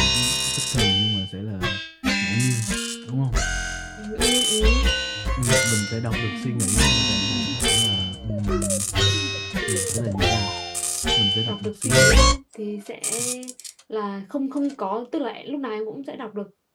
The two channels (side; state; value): both; identical; correlation 1.00